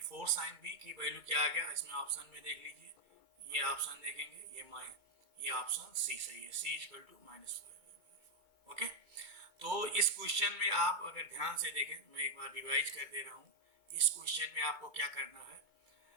4 साइन बी की वैल्यू क्या आ गया, इसमें ऑप्शन में देख लीजिए, ये ऑप्शन देखेंगे, ये ऑप्शन सी सही है, सी इक्वल टू -5/4। ओके, तो इस क्वेश्चन में आप अगर ध्यान से देखें, मैं एक बार रिवाइज कर दे रहा हूँ। इस क्वेश्चन में आपको क्या करना है,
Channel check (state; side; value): late; left; 2.2 ms